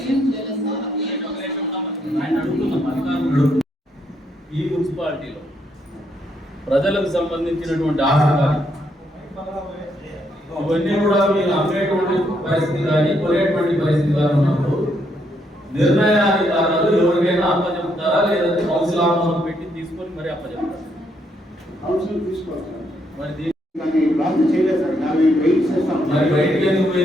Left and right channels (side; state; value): both; normal; correlation 0.75